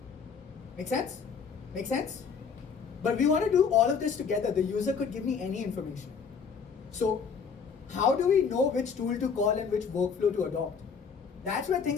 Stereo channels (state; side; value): quieter; right; 6.1 dB